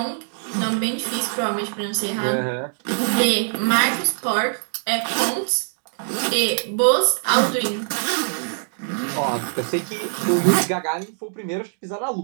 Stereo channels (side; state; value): left; silent; digital silence